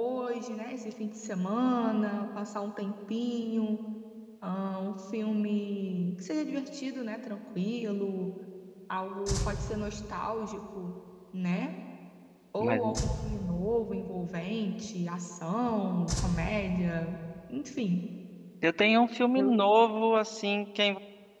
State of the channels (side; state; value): both; identical; correlation 1.00